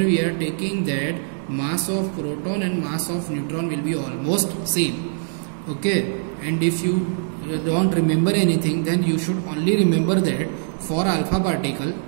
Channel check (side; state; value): left; silent; 60 dB below the other